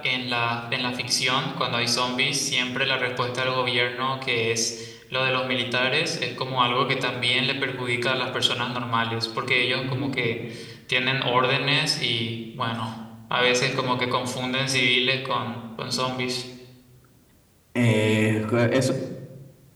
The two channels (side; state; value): both; identical; correlation 1.00